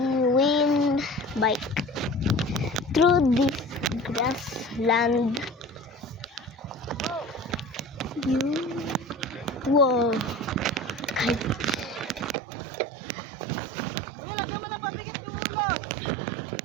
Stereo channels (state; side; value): drops out; left; at 12.4 s